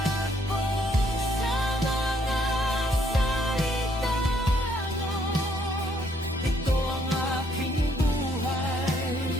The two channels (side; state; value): both; normal; correlation 0.68